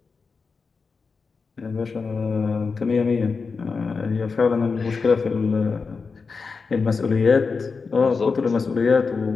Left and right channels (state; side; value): quieter; right; 4.8 dB